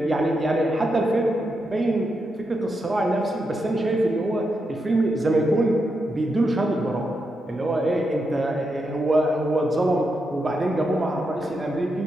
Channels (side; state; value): both; normal; correlation 0.84